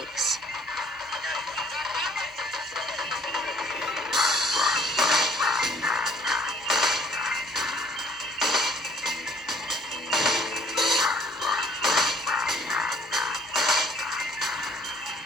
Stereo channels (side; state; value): both; normal; correlation 0.58